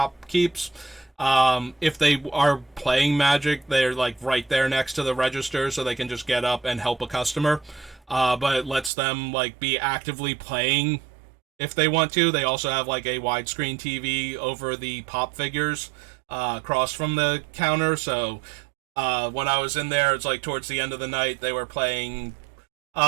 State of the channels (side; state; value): left; drops out; at 8.9 s